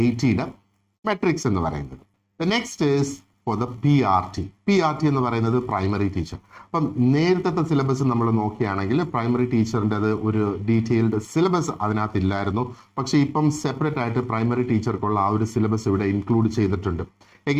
മെട്രിക്സ് എന്ന് പറയുന്നത്. The next is for the PRT. PRT എന്ന് പറയുന്നത് പ്രൈമറി ടീച്ചർ. അപ്പം നേരത്തെ സിലബസ് നമ്മൾ നോക്കുകയാണെങ്കിൽ പ്രൈമറി ടീച്ചറിൻ്റെ ഒരു ഡീറ്റെയിൽഡ് സിലബസ് അതിനകത്ത് ഇല്ലായിരുന്നു. പക്ഷേ ഇപ്പം സെപ്പറേറ്റ് ആയിട്ട് പ്രൈമറി ടീച്ചർക്കുള്ള ആ ഒരു സിലബസ് ഇവിടെ ഇൻക്ലൂഡ് ചെയ്തിട്ടുണ്ട്.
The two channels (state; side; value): identical; both; correlation 1.00